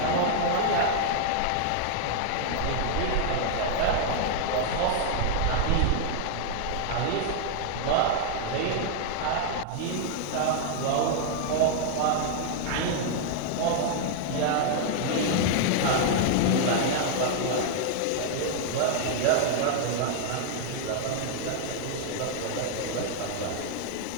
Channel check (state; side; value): different; both; correlation 0.00